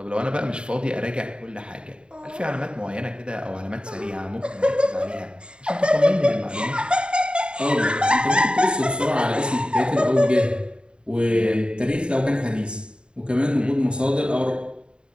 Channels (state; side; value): late; left; 0.052 ms